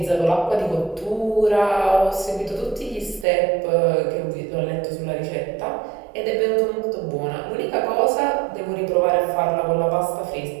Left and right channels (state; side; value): drops out; left; at 3.2 s